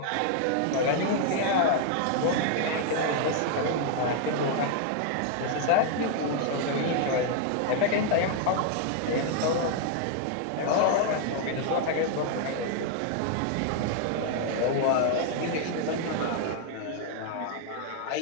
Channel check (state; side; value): different; both; correlation 0.00